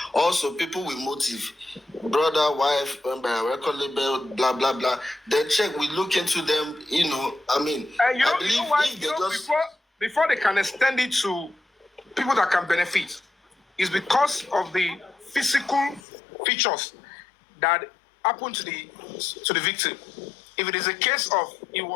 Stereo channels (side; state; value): right; drops out; at 16.0 s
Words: Also, people with motive, brother, wife, record label, blah, blah, blah. Then check, we look into them, you know, I mean, I believe if they just... Before they can extend it to people that can benefit, is because of the physical features that happened to the victim. If it is a case of he